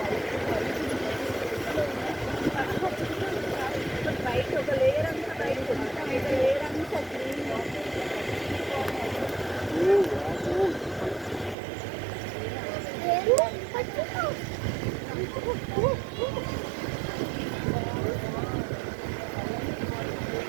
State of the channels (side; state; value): left; drops out; at 11.6 s